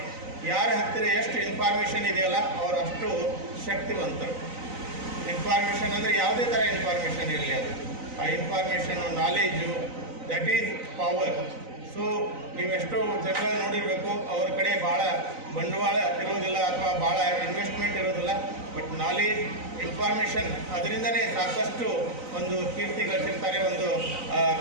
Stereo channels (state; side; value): late; left; 3.9 ms